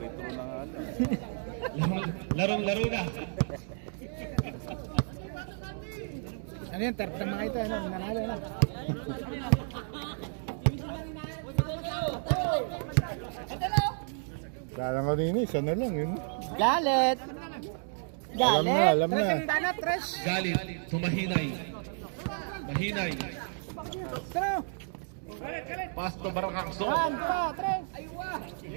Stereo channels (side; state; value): left; silent; 57 dB below the other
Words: Larong-laro na. Ano yun? Third na mga ito. Ano? Nanalo na. Kala ko din, isa na lang yun. Galit! Alam na, alam Tres na. ang dana, tres. Galit to Mahinay. Mahinay. Pero, Pass to Barangakso. one, two, tres.